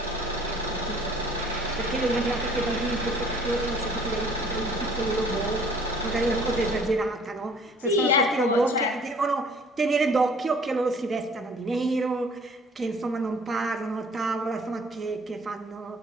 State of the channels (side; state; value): both; normal; correlation 0.54